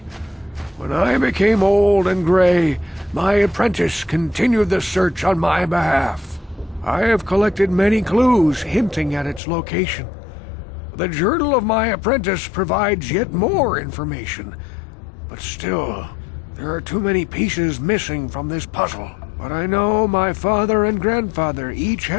When I became old and gray, my apprentice continued the search on my behalf. I have collected many clues hinting at its location. The journal of my apprentice provides yet more information. But still, there are too many pieces missing from this puzzle. But I know my father and grandfather each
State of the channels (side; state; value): right; drops out; at 9.4 s